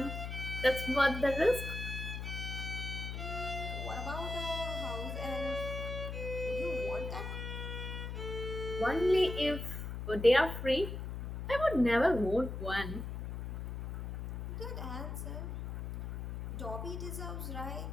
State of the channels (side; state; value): left; noise; hum, 6 dB below the sound